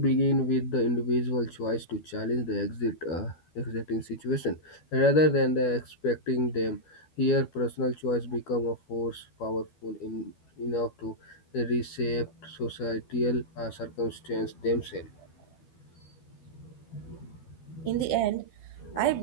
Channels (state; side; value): late; right; 12 ms